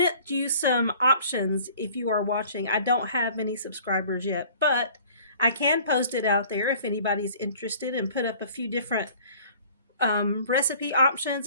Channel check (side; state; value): both; inverted; correlation -0.51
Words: you some options if you are watching. I don't have any subscribers yet, but I can post it out there if anybody's interested, and put up a few different recipe